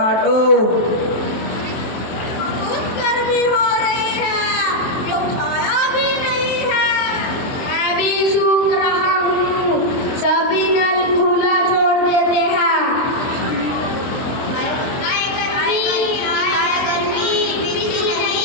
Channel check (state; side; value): late; right; 23 ms